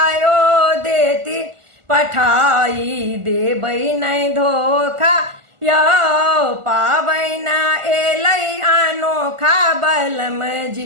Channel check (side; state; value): left; late; 1.4 ms